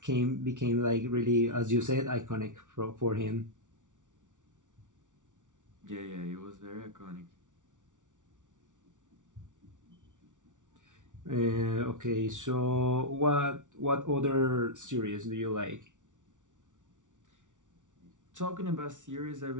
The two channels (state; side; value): late; left; 0.87 ms